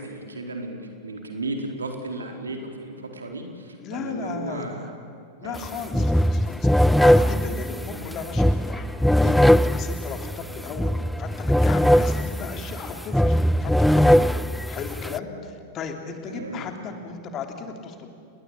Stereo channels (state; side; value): normal; both; correlation 0.91